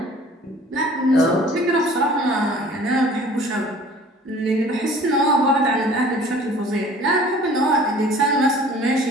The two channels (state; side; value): normal; both; correlation 0.49